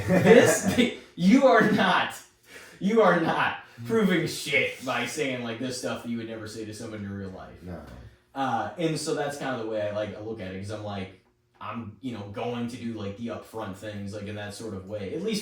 You are not proving shit by saying like this stuff that you would never say to someone in real life. No. And so that's kind of the way I look at it, because I'm like, I'm going to do like the upfront things like in that sort of way, at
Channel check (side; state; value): both; identical; correlation 1.00